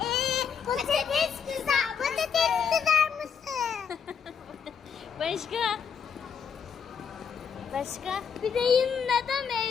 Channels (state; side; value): quieter; right; 6.9 dB